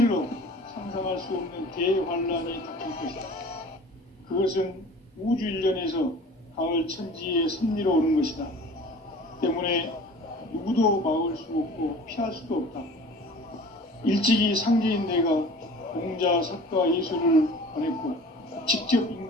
상상할 수 없는 대환란이 닥칠 것이다. 그것은 우주 일련에서 가을 천지의 섭리로 오는 것이다. 때문에 누구도 막을 수 없고 피할 수도 없다. 일찍이 상제인 내가 공자, 석가, 예술을 보냈고 직접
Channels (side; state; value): both; normal; correlation 0.44